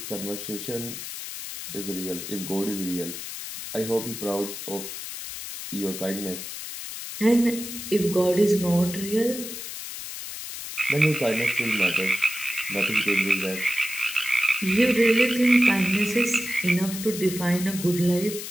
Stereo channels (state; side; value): noise; left; hiss, 8 dB below the sound